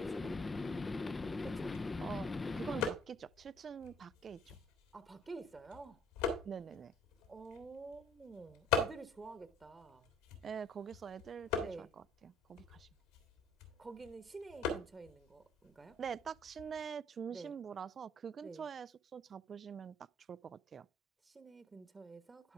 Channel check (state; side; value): normal; both; correlation 0.60